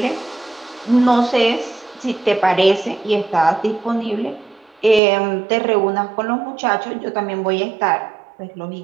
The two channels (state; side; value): drops out; left; at 5.0 s